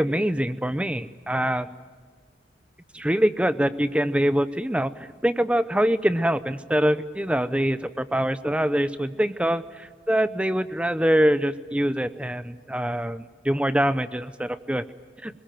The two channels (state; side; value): normal; both; correlation 0.94